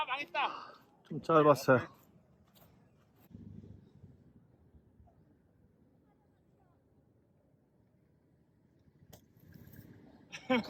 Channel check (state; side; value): identical; both; correlation 1.00